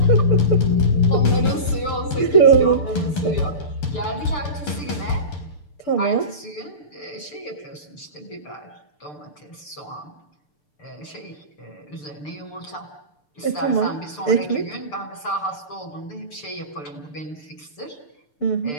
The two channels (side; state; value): right; late; 6.8 ms